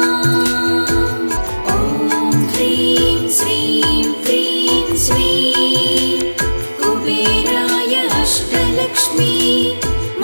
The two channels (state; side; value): inverted; both; correlation -1.00